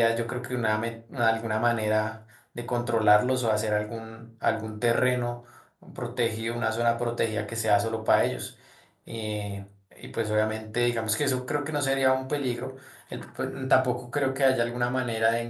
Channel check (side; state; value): both; identical; correlation 1.00